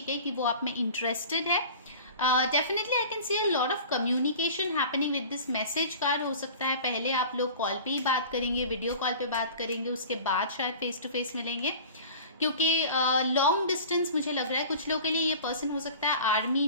है, कि वो आप में इंटरेस्टेड है। Definitely I can C a lot of communication happening with this message card. हो सकता है पहले आप लोग कॉल पे ही बात करेंगे, वीडियो कॉल पे बात करेंगे, उसके बाद शायद फेस टू फेस मिलेंगे, क्योंकि लॉन्ग डिस्टेंस मुझे लग रहा है कुछ लोगों के लिए ये पर्सन हो सकता है आर्मी,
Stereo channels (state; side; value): inverted; both; correlation -0.40